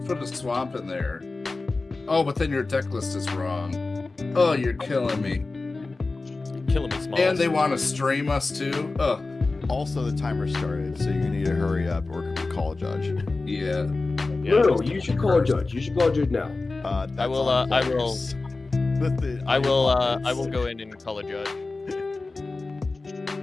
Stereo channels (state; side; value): quieter; right; 3.5 dB